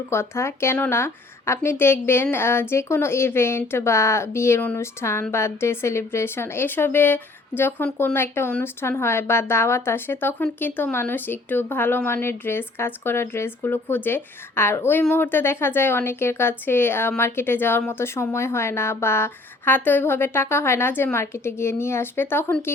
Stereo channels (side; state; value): right; quieter; 3.1 dB